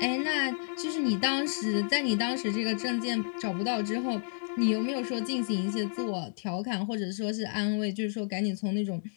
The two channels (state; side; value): silent; right; digital silence